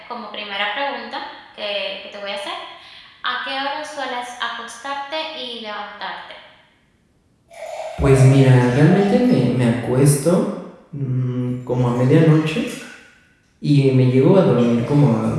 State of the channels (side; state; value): both; identical; correlation 1.00